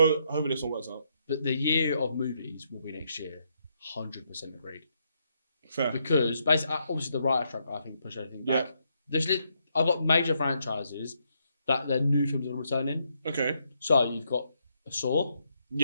hopefully this one works out. But the year of movies will be next year. 100% agreed. Fair. Because basically, obviously, the writer strike I think pushed everything back. Yeah. I've got major franchises that their new films are returning. Okay. So you've got a Saw.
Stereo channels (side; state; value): both; inverted; correlation -0.77